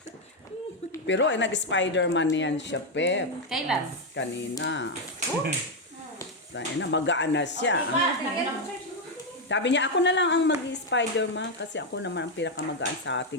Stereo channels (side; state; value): both; normal; correlation 0.04